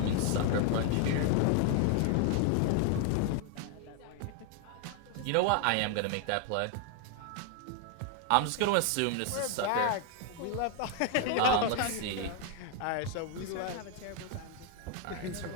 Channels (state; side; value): different; both; correlation 0.00